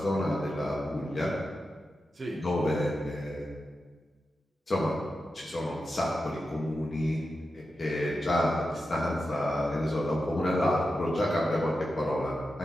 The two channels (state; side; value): normal; both; correlation 0.90